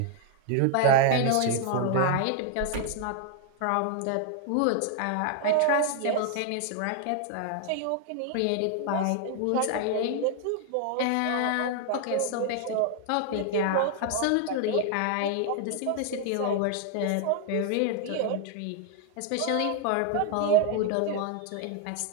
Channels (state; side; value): different; both; correlation 0.00